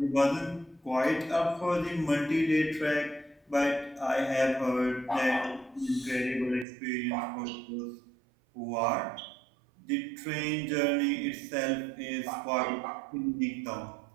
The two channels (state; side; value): drops out; left; at 6.7 s